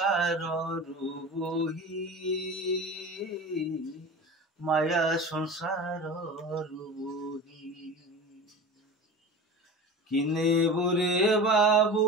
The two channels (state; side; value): normal; both; correlation 0.33